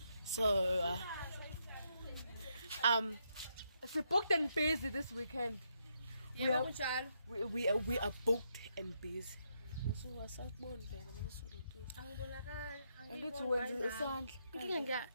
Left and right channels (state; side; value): inverted; both; correlation -0.78